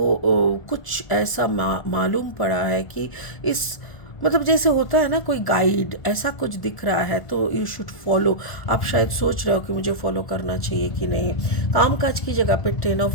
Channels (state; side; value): late; right; 1.5 ms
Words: कुछ ऐसा मालूम पड़ा है कि इस मतलब जैसे होता है ना कोई गाइड ऐसा कुछ दिख रहा है तो यू शुड फॉलो। आप शायद सोच रहे हो कि मुझे फॉलो करना चाहिए कि नहीं। कामकाज की जगह पे 10